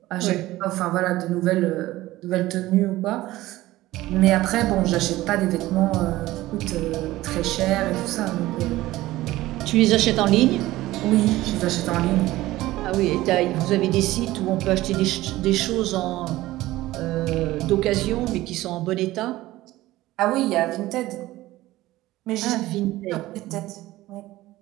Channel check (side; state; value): left; quieter; 17.0 dB